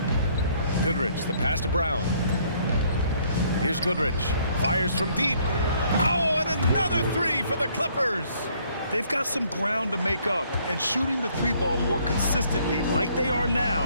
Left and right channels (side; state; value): both; inverted; correlation -0.64